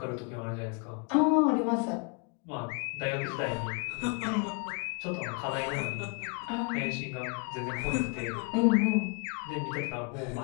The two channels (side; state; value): right; quieter; 33.4 dB